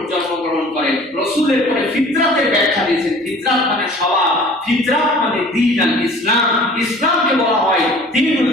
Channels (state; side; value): normal; both; correlation 0.47